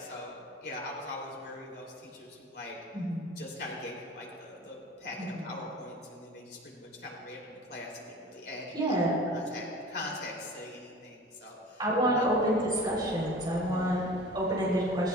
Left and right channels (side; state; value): both; normal; correlation 0.40